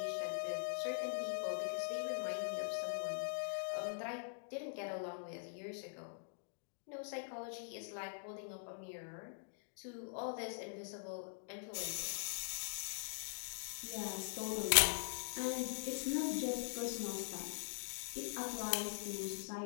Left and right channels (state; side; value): silent; right; digital silence